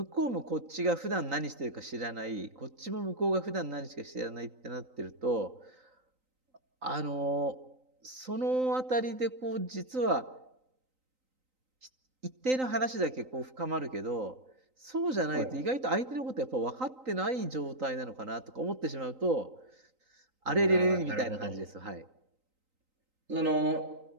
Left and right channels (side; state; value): left; late; 3.9 ms